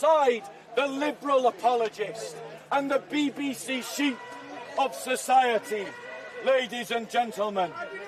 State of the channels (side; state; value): both; identical; correlation 1.00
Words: the liberal apologist and the BBC sheep of society. Ladies and gentlemen,